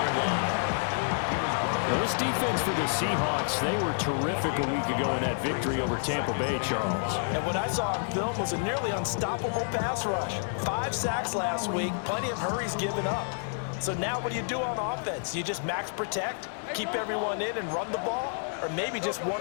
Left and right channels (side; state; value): right; silent; digital silence